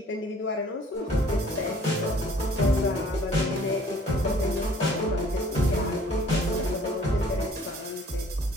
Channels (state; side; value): normal; both; correlation 0.55